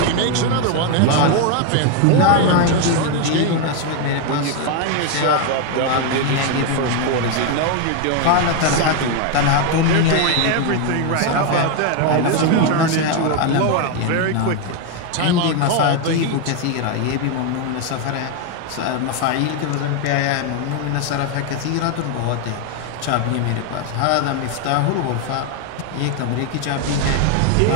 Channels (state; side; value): different; both; correlation 0.01